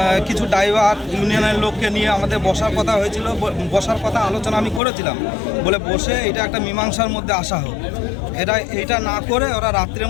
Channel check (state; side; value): drops out; right; at 4.8 s